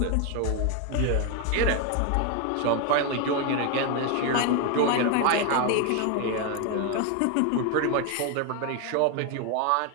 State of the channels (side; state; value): both; different; correlation 0.01